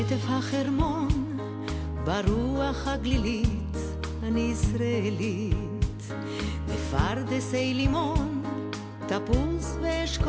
החרמון, ברוח הגלילית, אני ישראלית. בפרדסי לימון, תפוז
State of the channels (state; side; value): identical; both; correlation 1.00